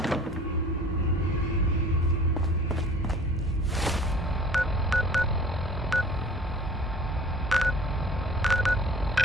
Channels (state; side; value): normal; both; correlation 0.48